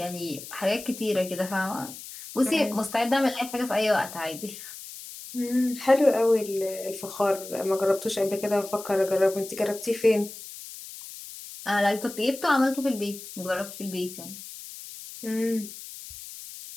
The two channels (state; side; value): noise; left; hiss, 13 dB below the sound